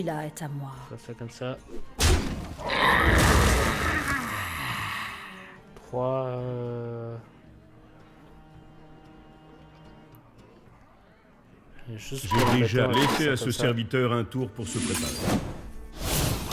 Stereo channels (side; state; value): both; identical; correlation 1.00